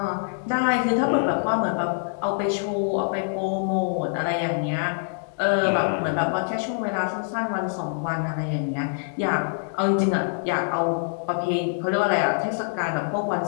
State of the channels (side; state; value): right; silent; digital silence